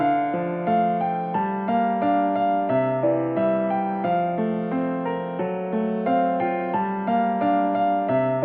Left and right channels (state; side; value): identical; both; correlation 1.00